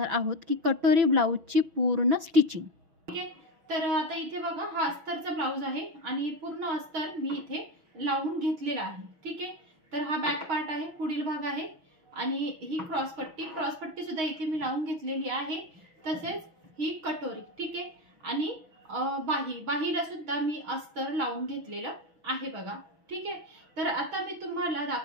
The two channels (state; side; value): late; left; 6.2 ms